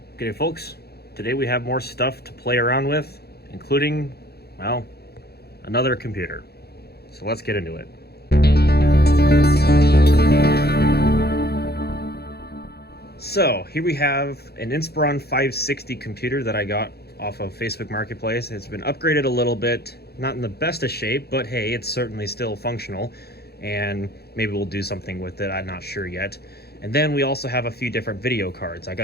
Okay, folks, today we have more stuff to play around with, including, well, another computer. So let's get into it. So here we have an Inspiron 560 computer that I got off of Facebook Marketplace. It's been upgraded a little bit, not in the best of shape, but hey, it's certainly still functional, and maybe we'll do something with it. I'm not sure yet. And then we also have a few different video cards. I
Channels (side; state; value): right; late; 0.46 ms